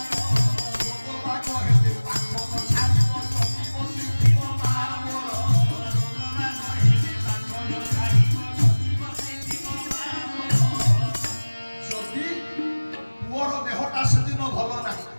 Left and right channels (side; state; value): both; inverted; correlation -1.00